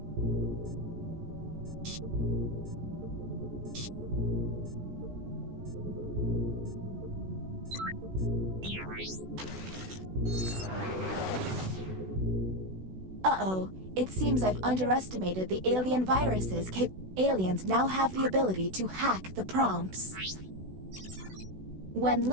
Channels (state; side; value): late; left; 16 ms